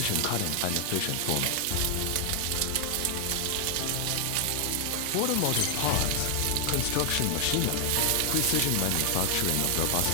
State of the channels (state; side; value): different; both; correlation 0.00